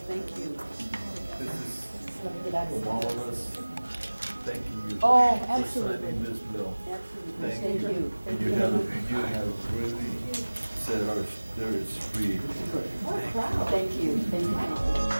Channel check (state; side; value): inverted; both; correlation -1.00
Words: Thank you. This is from all of us thanking you Oh, for absolutely. signing this bill. Absolutely. Thank Thank you. you. And Thank you have really set our spirits free. Good. Thank you. Thank you. Thank you.